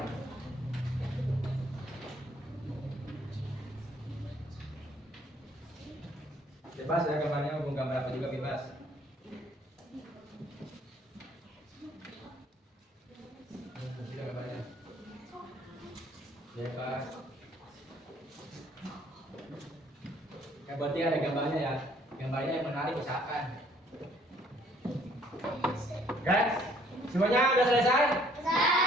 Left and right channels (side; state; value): both; normal; correlation 0.61